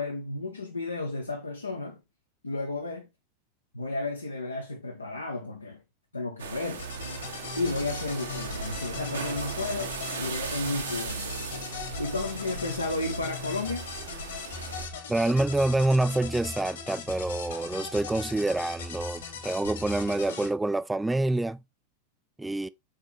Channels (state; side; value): normal; both; correlation 0.37